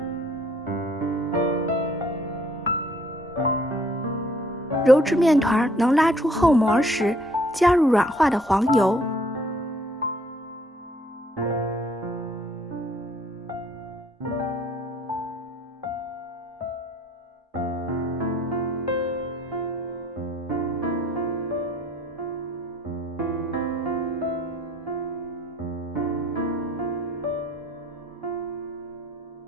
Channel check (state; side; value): normal; both; correlation 0.60